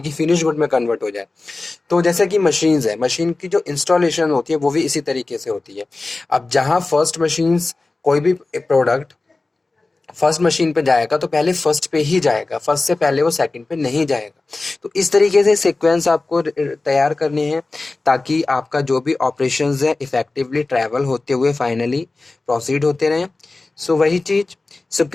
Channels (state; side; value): quieter; right; 3.4 dB